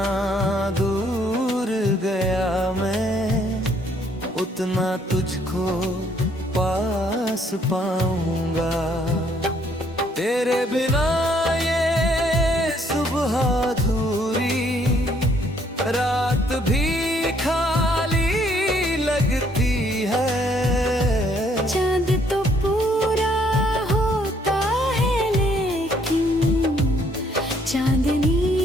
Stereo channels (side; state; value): both; normal; correlation 0.66